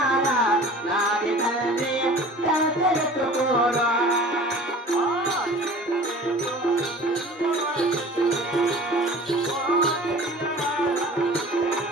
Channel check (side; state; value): both; normal; correlation 0.43